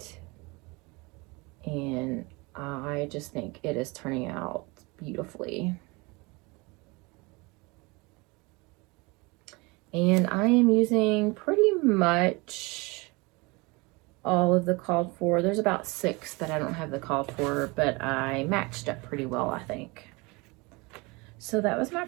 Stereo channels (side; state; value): left; quieter; 26.1 dB